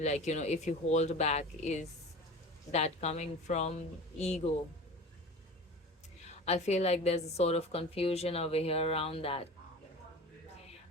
you hold back, is that coming from ego? I feel like there's a sort of confusion over here around that.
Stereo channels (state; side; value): normal; both; correlation 0.36